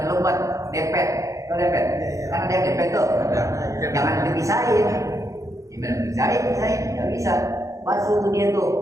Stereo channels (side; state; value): left; late; 0.15 ms